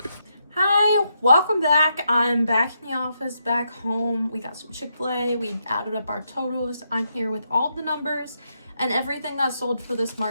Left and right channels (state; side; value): inverted; both; correlation -0.80